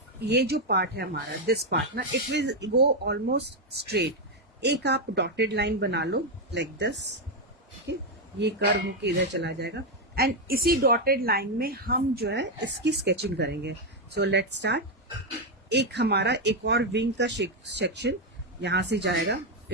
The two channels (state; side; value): normal; both; correlation 0.03